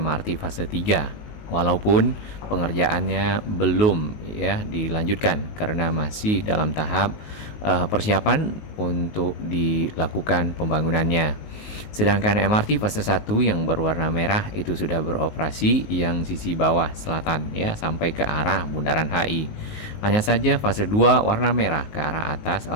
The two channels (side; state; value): right; late; 19 ms